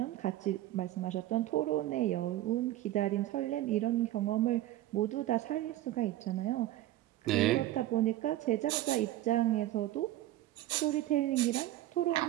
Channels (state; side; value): quieter; left; 14.8 dB